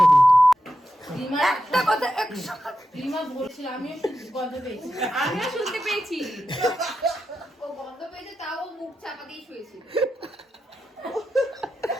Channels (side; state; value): both; normal; correlation 0.89